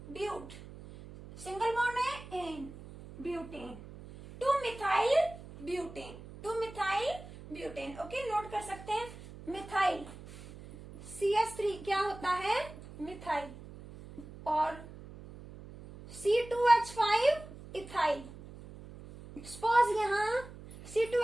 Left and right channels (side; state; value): right; noise; hum, 15 dB below the sound